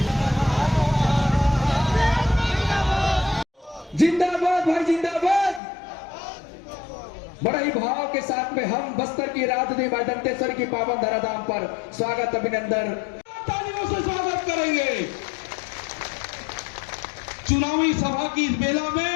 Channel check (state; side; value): drops out; right; at 5.6 s